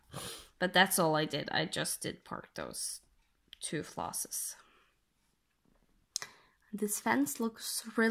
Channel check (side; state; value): both; identical; correlation 1.00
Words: But that's all I did. I just did park those two flosses. This fence looks